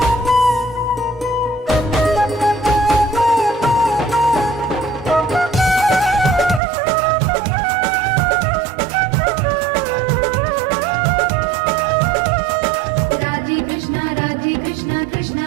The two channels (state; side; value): drops out; left; at 6.6 s